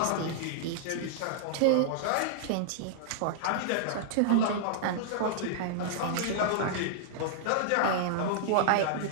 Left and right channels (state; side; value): different; both; correlation -0.01